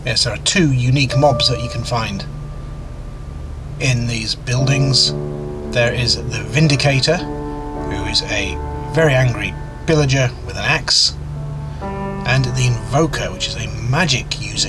Yes, there are 2 unique mobs that you can find in these buildings. There is the Vindicator, who is a very angry pillager with an axe, and the Envoker, which is a magic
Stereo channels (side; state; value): both; identical; correlation 1.00